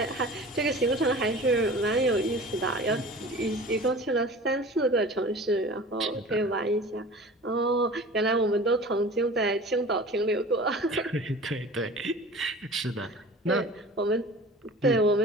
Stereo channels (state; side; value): normal; both; correlation 0.40